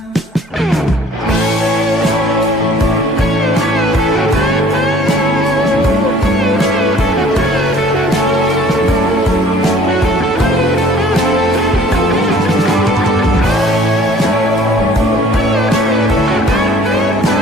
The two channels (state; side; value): normal; both; correlation 0.54